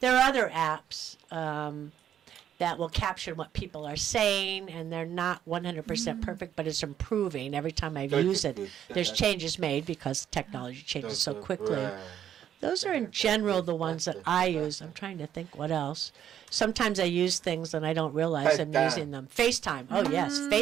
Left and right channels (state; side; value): quieter; left; 10.0 dB